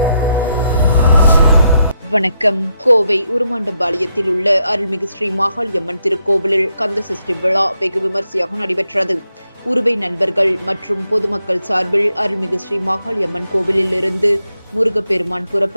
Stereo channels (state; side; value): inverted; both; correlation -0.79